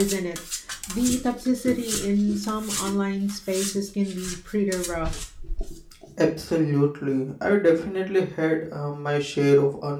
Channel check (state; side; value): identical; both; correlation 1.00